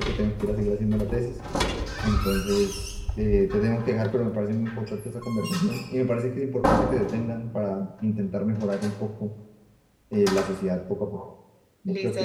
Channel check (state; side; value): identical; both; correlation 1.00